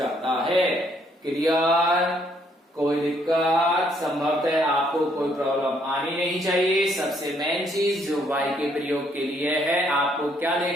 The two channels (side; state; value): both; normal; correlation 0.69